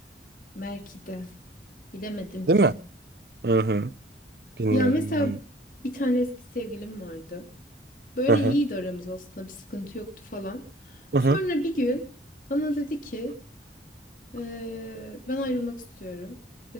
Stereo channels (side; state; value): both; normal; correlation 0.48